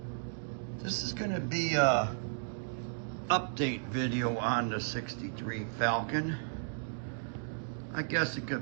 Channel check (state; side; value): silent; left; digital silence